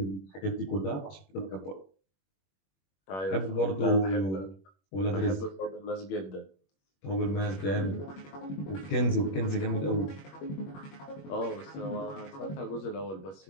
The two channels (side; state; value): right; late; 21 ms